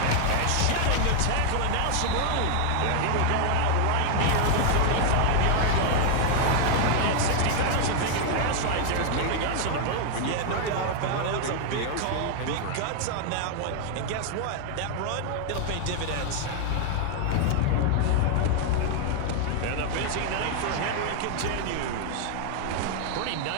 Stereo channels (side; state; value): both; different; correlation 0.00